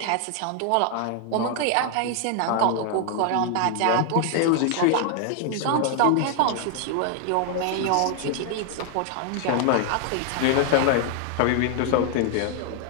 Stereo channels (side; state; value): both; different; correlation 0.00